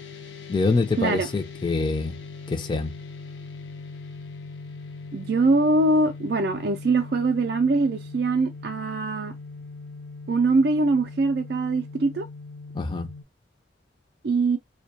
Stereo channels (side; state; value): both; normal; correlation 0.61